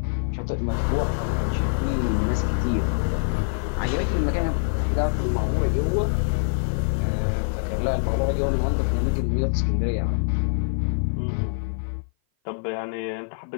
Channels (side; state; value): right; silent; 56 dB below the other